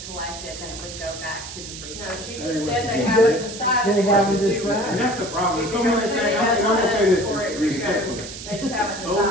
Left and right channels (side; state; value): right; noise; hiss, 11 dB below the sound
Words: collected, then it would go back to the 3 No, cents. she just said they haven't decided They what haven't to do with decided. And it. that's the problem, If so you're many gonna things, pay I'm gonna say us this for it, respectfully. They just haven't So